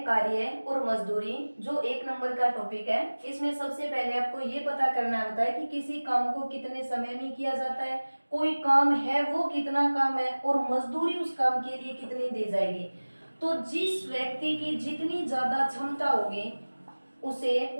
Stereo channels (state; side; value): inverted; both; correlation -1.00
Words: कार्य और मजदूरी, जो 1 नंबर का टॉपिक है। इसमें सबसे पहले आपको ये पता करना होता है कि किसी काम को कितने समय में किया जाता है, कोई काम है वो कितना काम है और मजदूरी उस काम के लिए कितनी दी जाएगी। तो जिस व्यक्ति की जितनी ज्यादा क्षमता होगी उसे